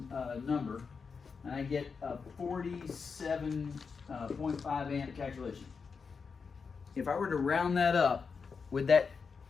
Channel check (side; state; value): right; quieter; 5.4 dB